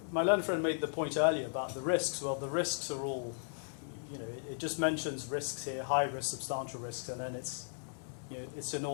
my learned friend made the point earlier about the risks. Well, the risks are all, it just mentions risks here, high risk, substantial risks, and then it's in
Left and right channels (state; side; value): silent; right; digital silence